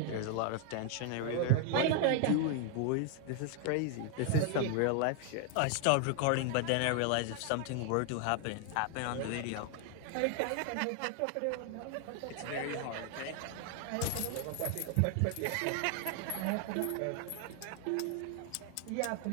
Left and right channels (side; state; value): both; different; correlation 0.00